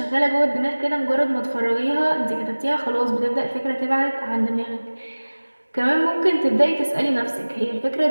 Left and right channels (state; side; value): inverted; both; correlation -1.00